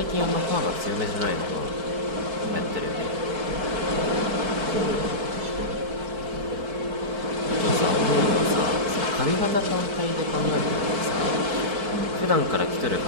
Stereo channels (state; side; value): late; left; 4.5 ms